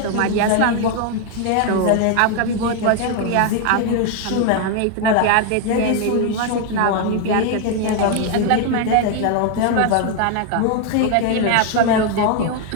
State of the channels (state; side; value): different; both; correlation 0.00